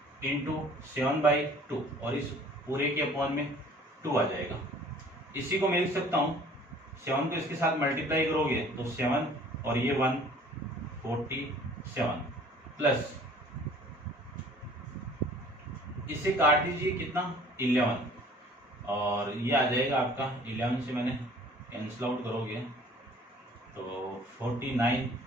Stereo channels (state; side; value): normal; both; correlation 0.51